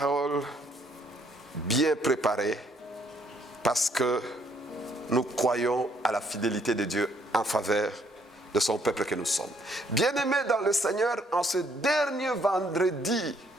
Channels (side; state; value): both; normal; correlation 0.67